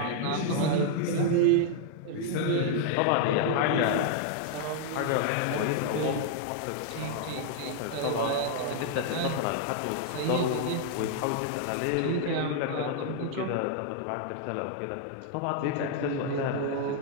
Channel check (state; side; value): different; both; correlation 0.00